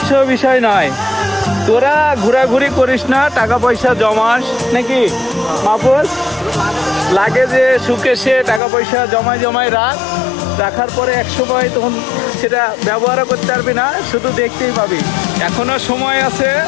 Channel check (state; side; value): drops out; right; at 8.6 s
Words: বিষয় নয়। তোরা ঘোরাঘুরি করিস না, টাকা পয়সা জমাস নাকি মাহফুজ? লাগে যে সুখে সে টাকা পয়সা জমায় জমায় রাখার পরে এক সময় তখন সেটা ব্যবহারও করতে পারবি না, শুধু দেখতেই পাবি। এখনো সময় আছে,